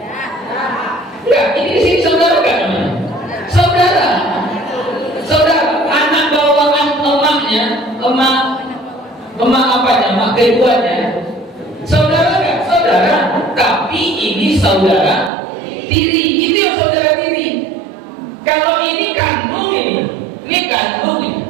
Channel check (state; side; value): drops out; left; at 15.3 s